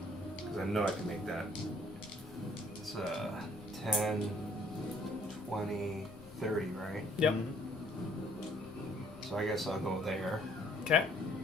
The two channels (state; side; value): noise; left; rumble, 19 dB below the sound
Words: because I know I can make that. It's 10, 20, 30, right? Yep. So I guess I'll go there Okay.